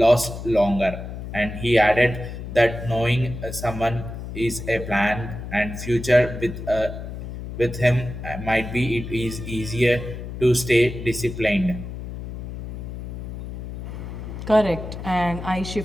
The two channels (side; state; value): left; noise; hum, 8 dB below the sound